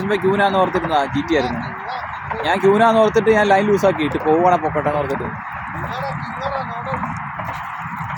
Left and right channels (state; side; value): identical; both; correlation 1.00